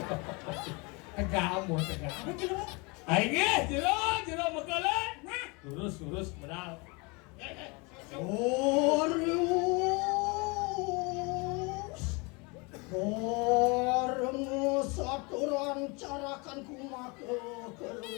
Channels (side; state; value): right; quieter; 28.9 dB